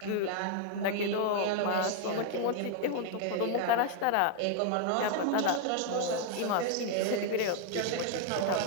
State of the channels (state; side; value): different; both; correlation 0.00